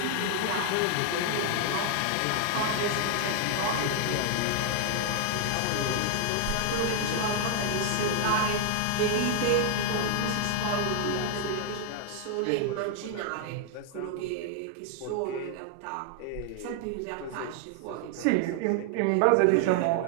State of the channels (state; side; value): different; both; correlation 0.00